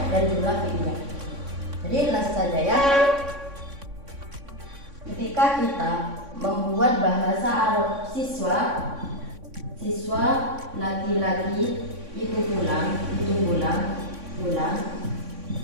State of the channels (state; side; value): late; left; 3.6 ms